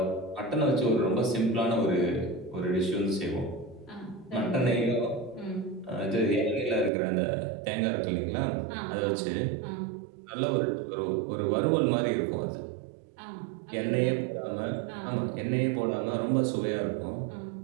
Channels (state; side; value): drops out; left; at 6.9 s